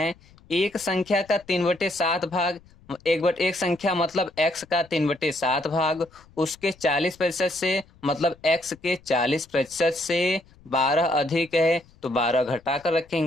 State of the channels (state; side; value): noise; left; rumble, 27 dB below the sound